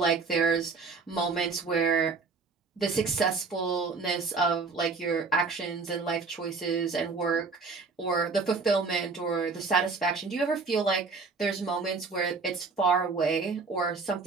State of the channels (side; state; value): left; quieter; 4.4 dB